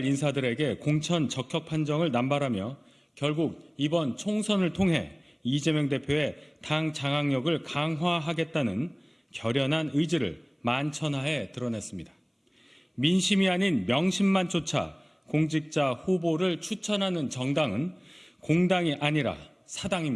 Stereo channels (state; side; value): identical; both; correlation 1.00